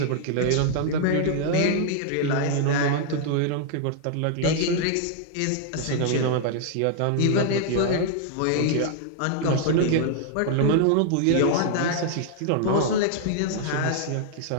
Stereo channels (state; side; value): different; both; correlation -0.01